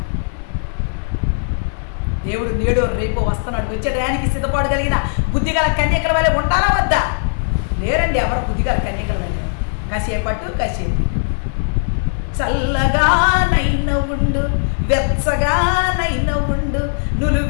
దేవుడు నేడు రేపు వస్తున్నాడు. వచ్చే టయానికి సిద్ధపడగలిగిన బుద్ధిగల కన్యకల వల్లే ఉండాలా వద్దా? లేరండి ఎవరు బుద్ధిగల కన్యకల వల్లే. కాసేపట్టు కాసేపు చల్లగానైన ఉండు, వెచ్చగానైన ఉండు, నువ్వు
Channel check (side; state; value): right; silent; 67 dB below the other